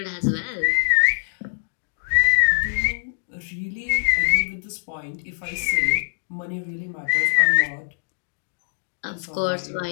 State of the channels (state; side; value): silent; right; digital silence